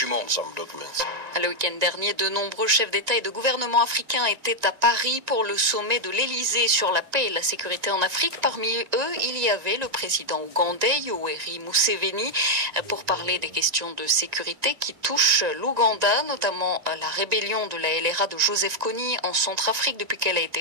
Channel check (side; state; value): left; late; 1.9 ms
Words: Le week-end dernier, de nombreux chefs d'État et de gouvernement africains étaient à Paris pour le sommet de l'Élysée sur la paix et la sécurité en Afrique. Parmi eux, il y avait le président ougandais, Yoweri Museveni, pour parler des questions de sécurité qui touchent l'Ouganda, notamment la rébellion de la LRA de Joseph Kony en Centrafrique depuis qu'elle a